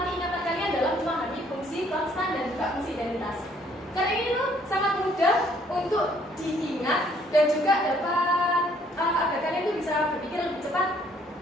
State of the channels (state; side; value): normal; both; correlation 0.64